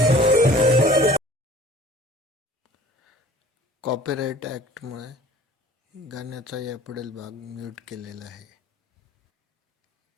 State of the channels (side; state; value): both; normal; correlation 0.48